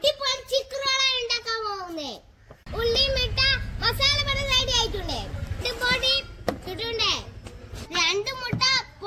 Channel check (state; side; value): identical; both; correlation 1.00